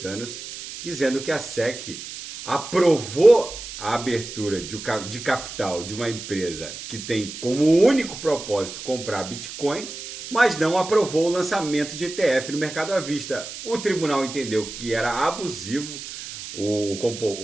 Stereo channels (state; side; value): noise; right; hiss, 11 dB below the sound